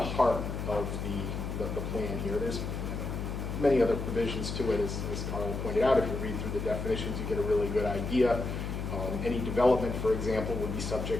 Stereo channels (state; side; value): noise; left; hum, 4 dB below the sound